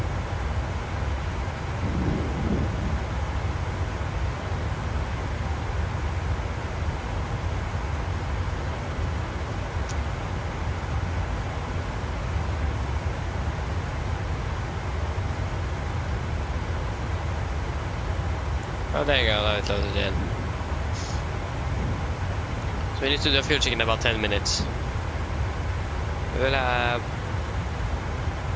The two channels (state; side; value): identical; both; correlation 1.00